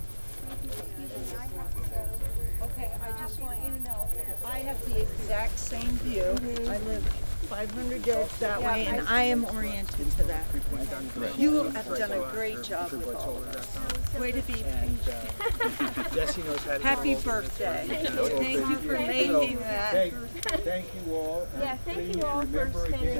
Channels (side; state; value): both; inverted; correlation -1.00